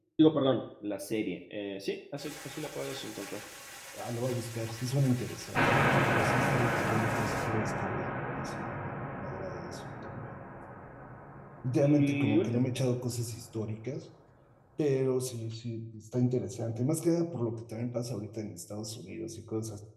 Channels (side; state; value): both; identical; correlation 1.00